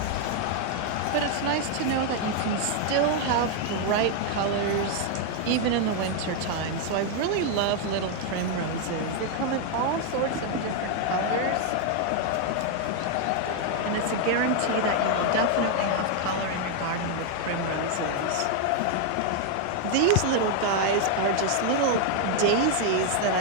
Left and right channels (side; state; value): both; different; correlation 0.00